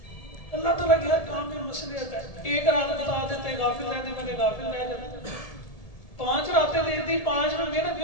अल्लाह ताला के हर काम में मसलियत है। एक रात बता देते, गाफिल रहने वाले गाफिल रह जाते। 5 रातें दे दी, 5 में मेहनत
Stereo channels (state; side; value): late; right; 1.7 ms